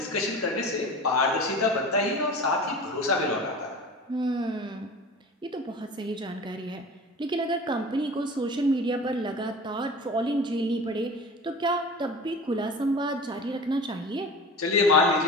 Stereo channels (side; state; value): both; normal; correlation 0.36